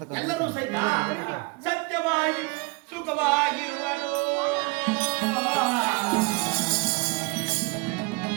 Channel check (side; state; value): left; quieter; 27.0 dB